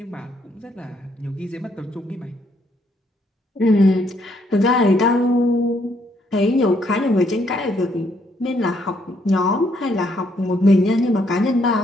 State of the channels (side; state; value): both; normal; correlation 0.71